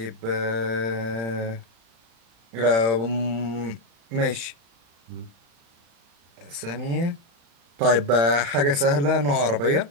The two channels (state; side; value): late; left; 35 ms